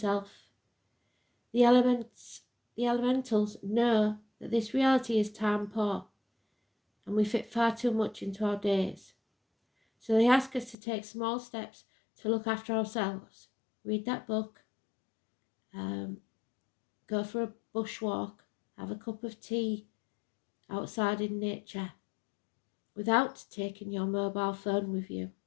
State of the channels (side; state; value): right; drops out; at 10.8 s